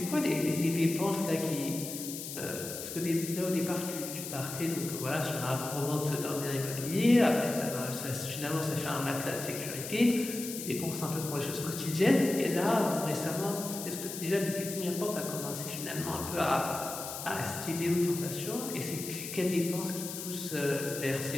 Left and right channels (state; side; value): noise; left; hiss, 8 dB below the sound